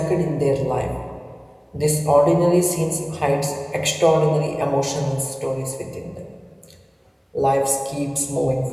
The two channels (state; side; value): identical; both; correlation 1.00